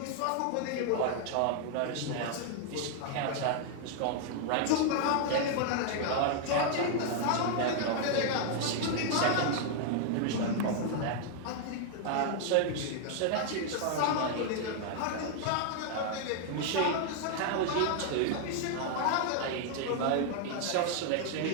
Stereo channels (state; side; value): different; both; correlation 0.00